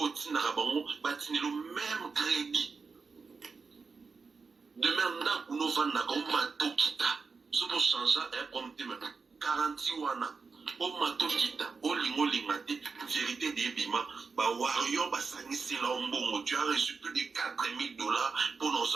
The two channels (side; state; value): left; quieter; 4.8 dB